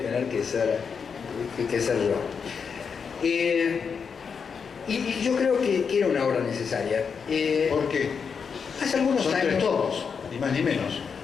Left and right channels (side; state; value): right; quieter; 6.1 dB